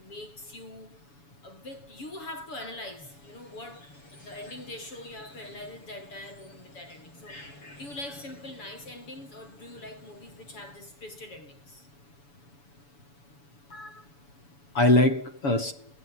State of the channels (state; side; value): late; right; 7.0 ms